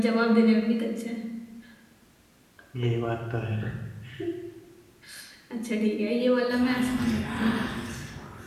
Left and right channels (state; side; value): identical; both; correlation 1.00